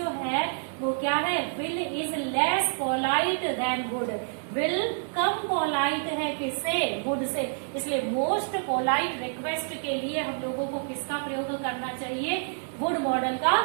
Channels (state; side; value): silent; left; digital silence